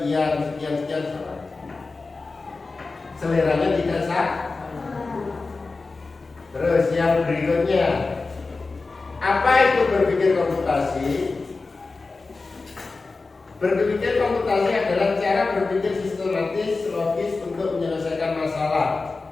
salah. Seleranya tidak sah. Terus yang berikutnya, apa itu berpikir komputasi? Berpikir komputasi adalah cara berpikir sistematis, logis untuk menyelesaikan masalah.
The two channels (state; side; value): quieter; right; 3.8 dB